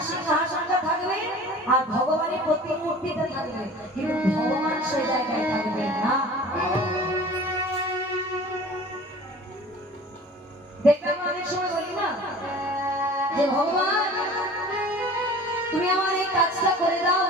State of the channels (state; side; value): normal; both; correlation 0.43